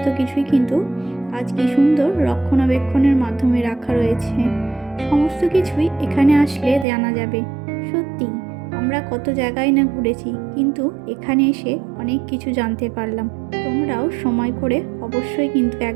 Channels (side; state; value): left; drops out; at 6.9 s